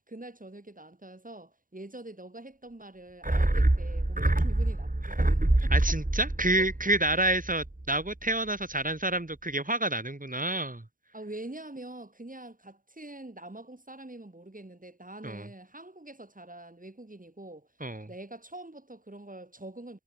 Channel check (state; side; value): late; left; 0.40 ms